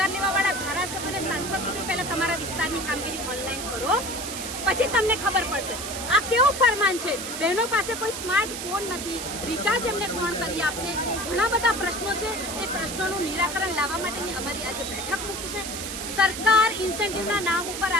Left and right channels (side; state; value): right; noise; hiss, 6 dB below the sound